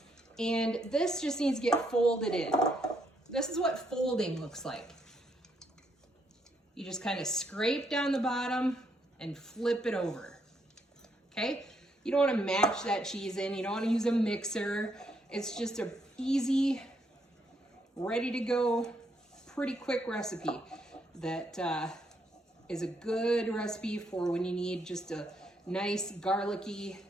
And this just needs to get folded in. This is what folding looks like. You just kind of scrape down the bottom and flip it over, okay? You don't want to mash that cheese in. You don't want to use a mixer. It's just a easy, ready to go, pretty quick recipe that is a good recipe for when you need just a nice garlicky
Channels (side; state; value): both; normal; correlation 0.75